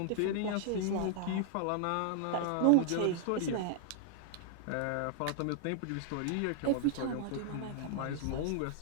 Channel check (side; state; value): both; different; correlation -0.01